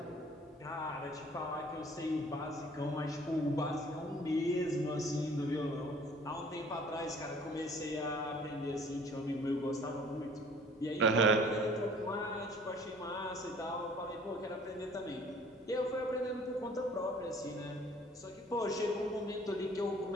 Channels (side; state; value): both; normal; correlation 0.53